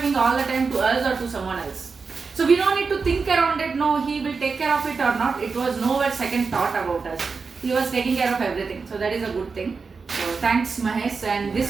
all the time to us or to someone else. So we don't need to think around it, no, he will take care of it or not. It was nowhere second thought about us. He was taking care of everything. So that is a good thing. So thanks Mahesh, and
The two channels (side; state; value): left; quieter; 4.8 dB